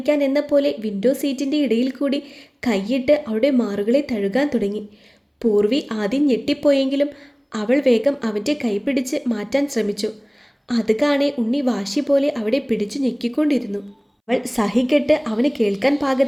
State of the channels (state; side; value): identical; both; correlation 1.00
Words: എന്ന പോലെ വിൻഡോ സീറ്റിൻ്റെ ഇടയിൽ കൂടി കൈയിട്ട് അവളുടെ മാറുകളെ തഴുകാൻ തുടങ്ങി. പൂർവി ആദ്യം ഞെട്ടിപ്പോയെങ്കിലും അവൾ വേഗം അവൻ്റെ കൈ പിടിച്ച് മാറ്റാൻ ശ്രമിച്ചു. അത് കാണെ ഉണ്ണി വാശി പോലെ അവിടെ പിടിച്ചു ഞെക്കിക്കൊണ്ടിരുന്നു. അവൾ സഹികെട്ട് അവന് കേൾക്കാൻ